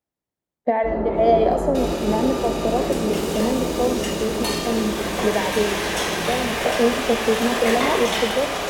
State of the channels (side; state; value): both; identical; correlation 1.00